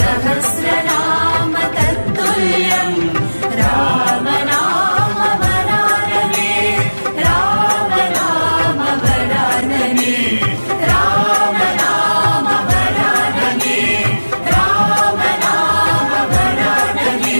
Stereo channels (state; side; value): inverted; both; correlation -1.00